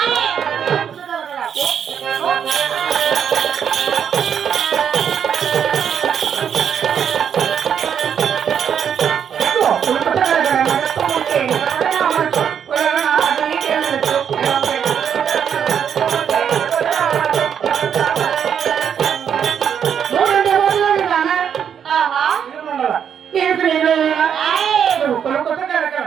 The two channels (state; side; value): quieter; left; 8.1 dB